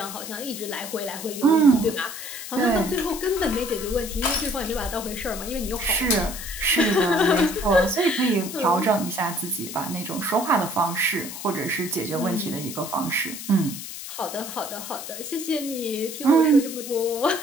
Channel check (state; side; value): noise; left; hiss, 9 dB below the sound